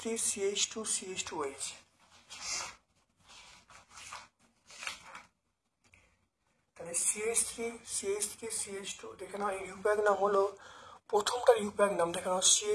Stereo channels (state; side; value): identical; both; correlation 1.00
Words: CH2 CH2OH। তাহলে CH3 CH2 দেখে নাও, ইউপ্যাক নাম হলো প্রথমটার ইউপ্যাক নাম, দেখে নাও